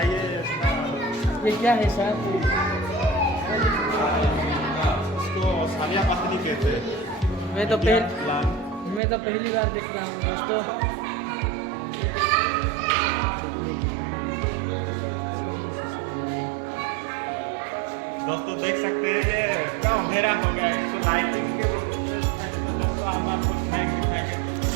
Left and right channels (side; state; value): left; drops out; at 9.0 s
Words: ये क्या है सर? इसको सालिया पत्नी कहते हैं। मैं तो पहली बार देख रहा हूँ दोस्तों। देख सकते हैं ये पूरा अंधेरा हो गया है, इसको लाइटिंग के दोस्तों हम आपको स्नैक दिखाएंगे,